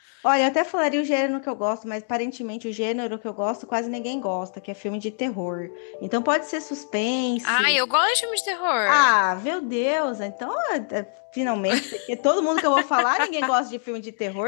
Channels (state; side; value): silent; right; digital silence